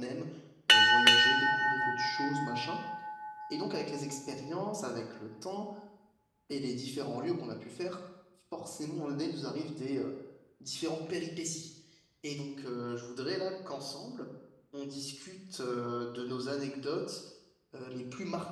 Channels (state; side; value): identical; both; correlation 1.00